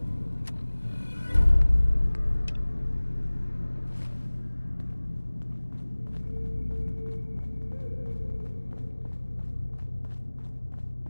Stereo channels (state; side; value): inverted; both; correlation -1.00